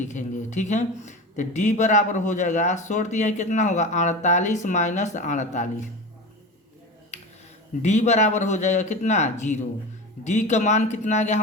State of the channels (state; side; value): normal; both; correlation 0.28